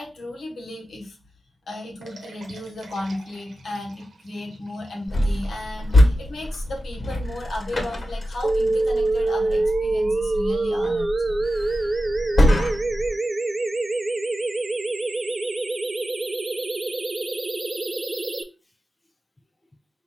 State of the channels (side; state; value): both; normal; correlation 0.92